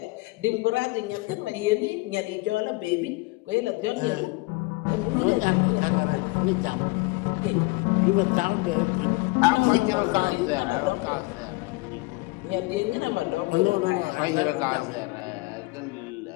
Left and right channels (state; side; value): quieter; right; 24.2 dB